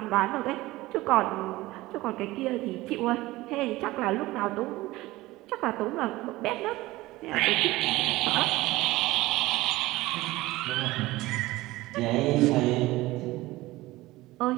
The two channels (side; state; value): left; quieter; 18.7 dB